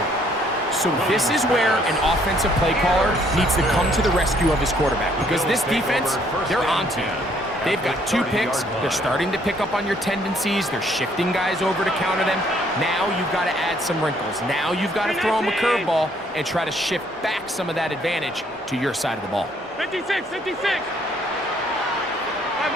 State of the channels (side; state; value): both; normal; correlation 0.65